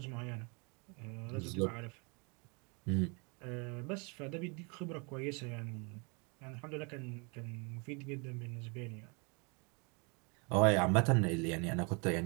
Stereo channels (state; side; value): quieter; left; 32.6 dB